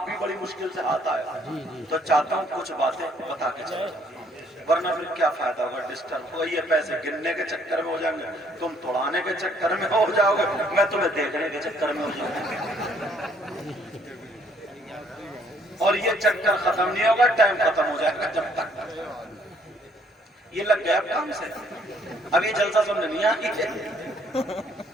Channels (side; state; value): both; normal; correlation 0.64